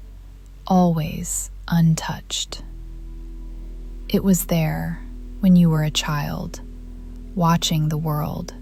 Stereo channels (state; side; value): identical; both; correlation 1.00